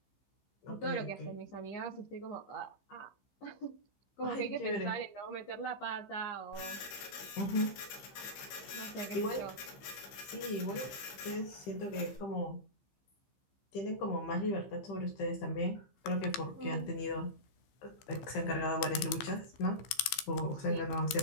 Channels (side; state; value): right; late; 15 ms